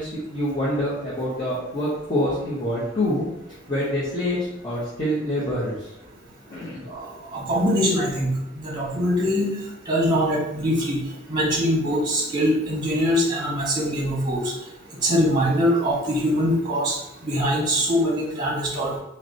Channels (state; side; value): normal; both; correlation 0.49